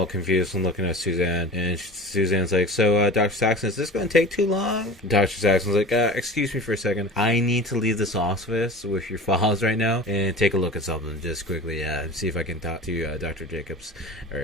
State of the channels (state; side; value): normal; both; correlation 0.37